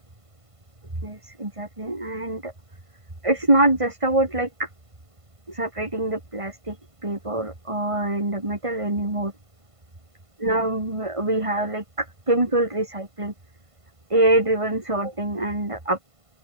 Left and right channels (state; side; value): late; left; 1.5 ms